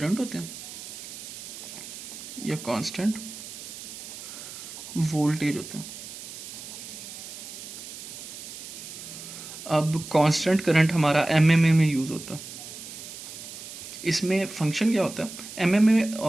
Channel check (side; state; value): right; noise; hiss, 11 dB below the sound